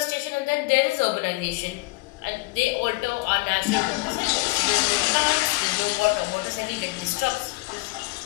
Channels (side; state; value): right; quieter; 23.3 dB